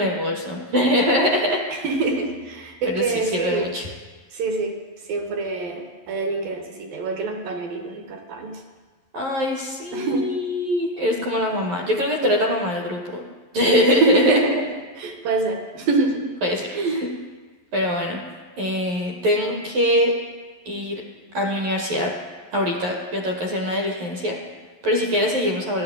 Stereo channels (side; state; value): left; late; 11 ms